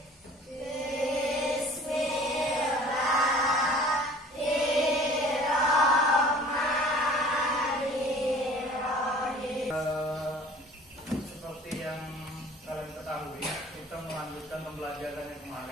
Seperti yang kalian ketahui, kita melanjutkan pembelajaran yang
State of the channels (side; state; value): both; normal; correlation 0.48